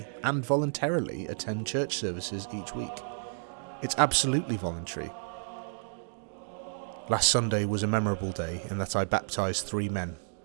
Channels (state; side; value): silent; left; digital silence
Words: and voluntarily attend church services each week. It's absolutely voluntary. Last Sunday was a memorable day in that I baptised 3 men,